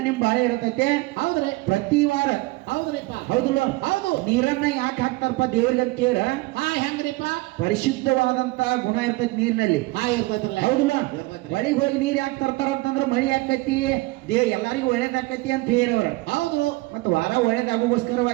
ನಿಮ್ ಬಾಳೆ ಇರತೈತೆ ಹೌದ್ರಿ ಪ್ರತಿ ವಾರ ಹೌದ್ರಿಪ್ಪ ಹೌದಲ್ಲ ಹೌದು ನೀರನ್ನ ಯಾಕೆ ಹಾಕ್ತಾರಪ್ಪ ದೇವ್ರಿಗೆ ಅಂತ ಕೇಳ ಹಾ ಹೆಂಗ್ರಿಪ್ಪ ಪರಿಶುದ್ಧವಾದಂತ ಗುಣ ಇರ್ತೈತಿ ನೀರಿನಲ್ಲಿ ಹಾ ಇರ್ತೈತ್ರಲ್ಲ ಹೌದಲ್ಲ ಇರ್ತೈತ್ರಿ. ಹೊಳಿಗೆ ಹೋಗಿ ನೀರ್ ಯಾಕೆ ತರ್ತಾರ ಅಂತಂದ್ರ ಮಳಿ ಆಕತಿ ಎಲ್ಲರಿಗೂ ಒಳ್ಳೇದಾಕತಿ ಅಂತ ಹೇಳವ್ರ ಹೌದು ಮತ್ತ ವಾರ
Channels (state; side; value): quieter; left; 21.5 dB